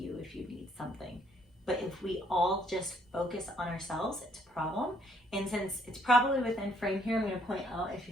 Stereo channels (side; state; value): both; normal; correlation 0.66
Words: if you need something. But if we all just focus on ourselves, it's a problem. And since it's probably within frame here, I'm going to point out, if